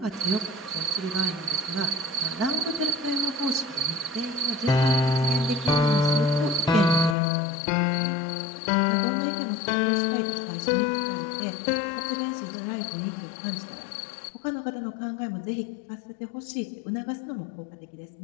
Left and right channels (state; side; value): drops out; right; at 7.2 s